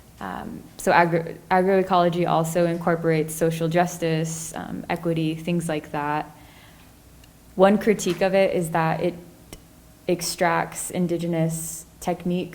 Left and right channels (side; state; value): both; identical; correlation 1.00